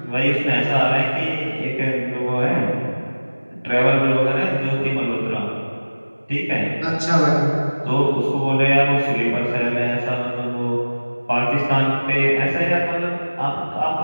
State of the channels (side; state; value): both; inverted; correlation -1.00